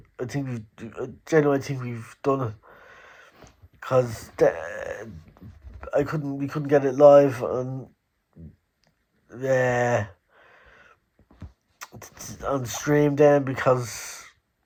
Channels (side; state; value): both; identical; correlation 1.00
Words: genuinely think we've done it. because we couldn't get it live on stream then, because